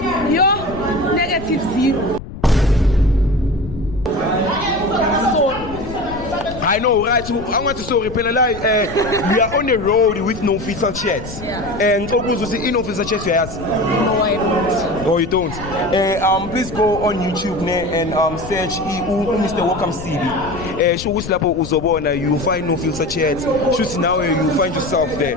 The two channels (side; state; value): left; noise; rumble, 12 dB below the sound